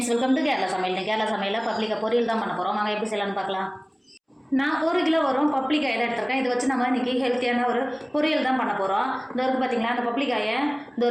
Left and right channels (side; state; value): both; identical; correlation 1.00